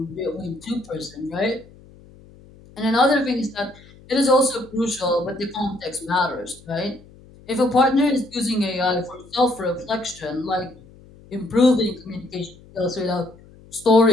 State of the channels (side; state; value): left; noise; hum, 24 dB below the sound